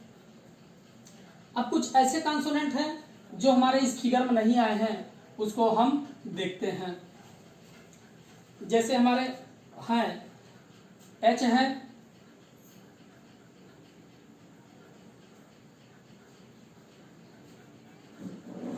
अब कुछ ऐसे कॉन्सोनेंट हैं जो हमारे इस फिगर में नहीं आए हैं, उसको हम देखते हैं। जैसे हमारे हैं एच है,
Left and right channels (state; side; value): identical; both; correlation 1.00